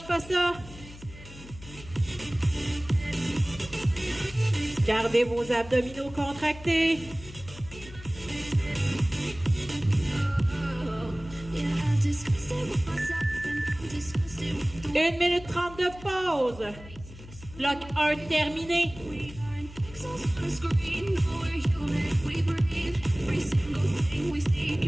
pas ça. Gardez vos abdominaux contractés. 1 minute 30 de pause. Bloc 1 terminé.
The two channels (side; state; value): left; noise; hum, 17 dB below the sound